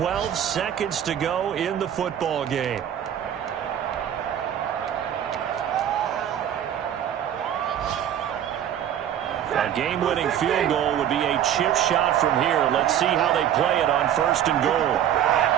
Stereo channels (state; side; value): quieter; left; 10.2 dB